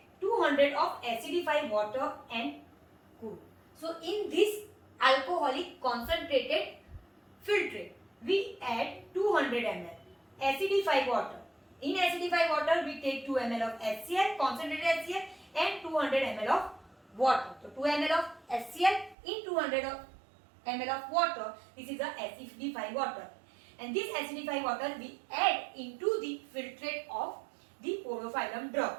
200 of acidified water and cool. So in this alcoholic concentrated filtrate, we add 200 ml acidified water. In acidified water, we take 2 ml of HCl, concentrated HCl, and 200 ml of water. So 2 ml of HCl in 200 ml of water. This is the acidified water. And this acidified water we add into the filtrate of the podophyllum drug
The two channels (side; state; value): left; drops out; at 19.2 s